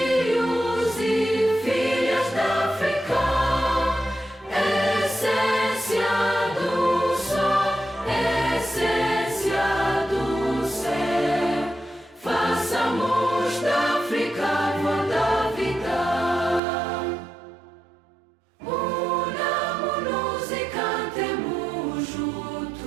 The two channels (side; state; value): left; drops out; at 16.6 s